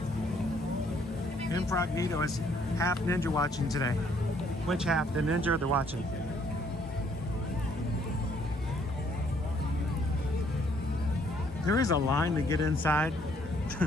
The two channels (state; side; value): normal; both; correlation 0.65